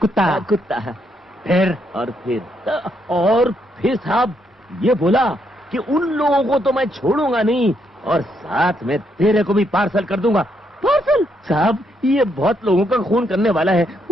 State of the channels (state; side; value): normal; both; correlation 0.76